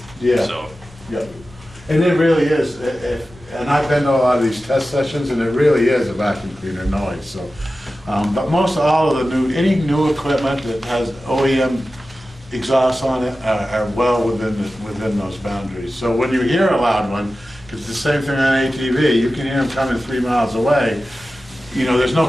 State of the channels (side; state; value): both; normal; correlation 0.94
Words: Yeah. So. Yeah. And it really is. And I've been to a lot of these test sessions, and it really is a vacuum cleaner noise. So, but most all of any new equipment that has OEM exhausts on it are well within those boundaries. So when you hear a loud one, because it's the same thing on ATV, you can hear them coming 3 miles away. You know, there's